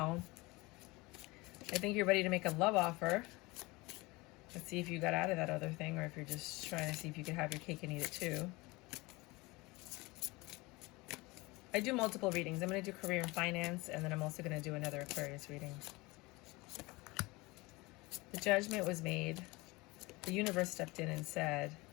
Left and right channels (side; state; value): right; quieter; 23.2 dB